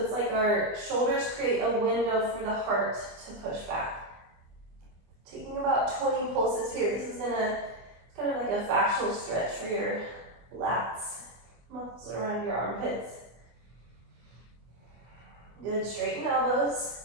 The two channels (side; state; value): left; late; 24 ms